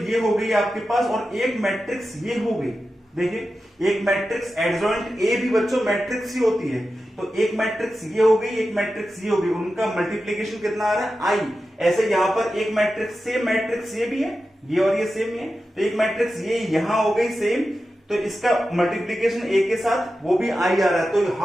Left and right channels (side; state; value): both; normal; correlation 0.92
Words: ये हो गई आपके पास और एक मैट्रिक्स ये हो गई। देखिए एक मैट्रिक्स एडजॉइंट ए भी बच्चों मैट्रिक्स ही होती है, तो एक मैट्रिक्स ये हो गई, एक मैट्रिक्स ये हो गई, उनका मल्टीप्लीकेशन कितना आ रहा है I। ऐसे यहां पर एक मैट्रिक्स सेम मैट्रिक्स ये भी है, ये और ये सेम है, तो एक मैट्रिक्स ये यहां हो गई सेम, तो इसका मल्टीप्लीकेशन a के साथ वो भी i आ रहा है, तो